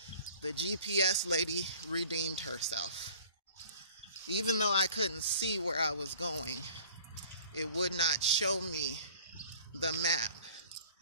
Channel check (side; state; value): both; inverted; correlation -0.49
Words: the GPS lady redeemed herself. Even though I couldn't see where I was going, it would not show me the map.